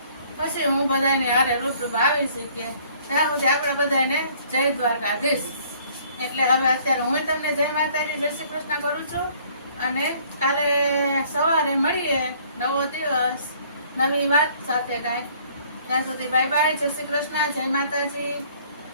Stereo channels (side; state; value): both; inverted; correlation -0.58